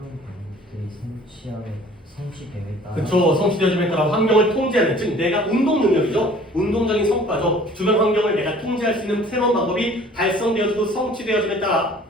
방법들이 성취됨에 따라 그쵸. 성취되어짐에 따라 환경을 통제하는, 즉 내가 운동 능력이죠. 운동적인 성과죠. 주변 환경을 내가 통제할 수 있는 새로운 방법이 달성되어지고 성취되어짐에 따라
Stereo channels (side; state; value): both; normal; correlation 0.51